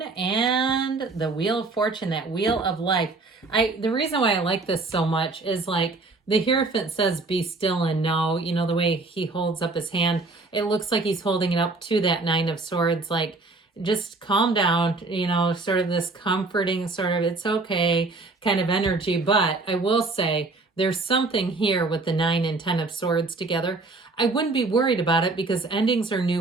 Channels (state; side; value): quieter; left; 3.5 dB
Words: and the Wheel of Fortune, that Wheel of Life. The reason why I like this so much is, like, the Hierophant says, be still and know. You know, the way he holds up his hand, it looks like he's holding it up to that Nine of Swords, like, just calm down, you know, sort of this comforting sort of, it's okay kind of energy. But I will say there's something here with the 9 and 10 of Swords together. I wouldn't be worried about it because endings are